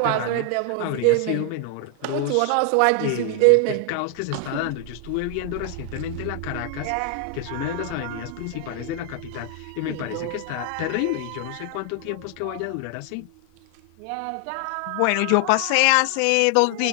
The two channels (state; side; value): different; both; correlation 0.00